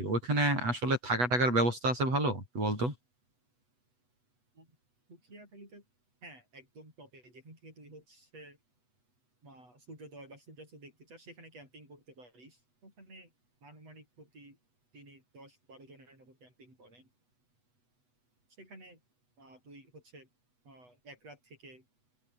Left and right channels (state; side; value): late; left; 8.1 ms